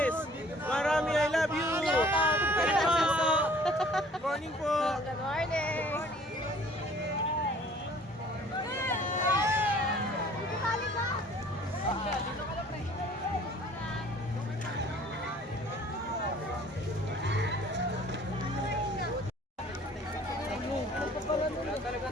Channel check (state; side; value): normal; both; correlation 0.53